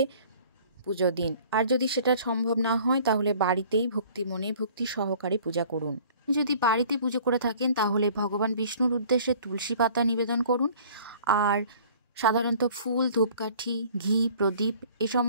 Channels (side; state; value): both; inverted; correlation -0.51